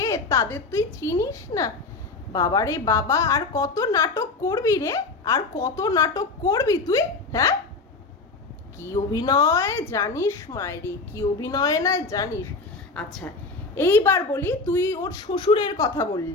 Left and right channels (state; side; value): quieter; right; 3.8 dB